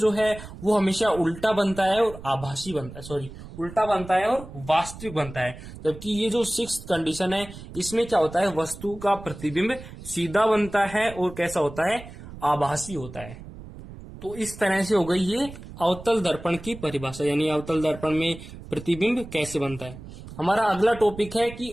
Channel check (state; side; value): noise; right; rumble, 14 dB below the sound